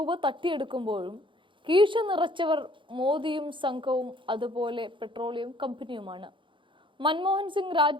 തട്ടിയെടുക്കുമ്പോഴും കീശ നിറച്ചവർ മോദിയും സംഘവും, അതുപോലെ പെട്രോളിയം കമ്പനിയുമാണ്. മൻമോഹൻ സിംഗ്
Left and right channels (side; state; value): left; late; 0.24 ms